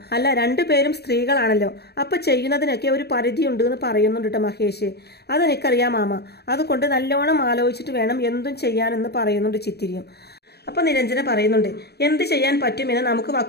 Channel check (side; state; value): right; late; 0.47 ms